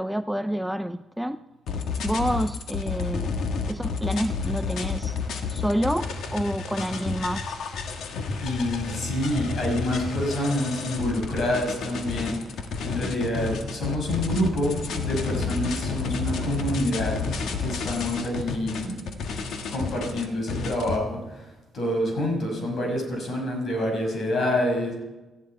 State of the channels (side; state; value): both; normal; correlation 0.71